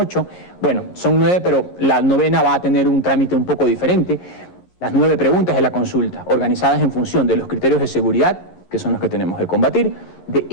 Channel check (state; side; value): late; right; 11 ms